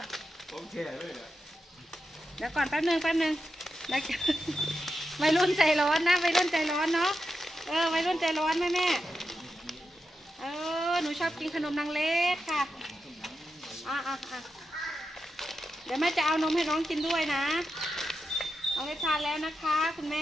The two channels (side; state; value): both; normal; correlation 0.88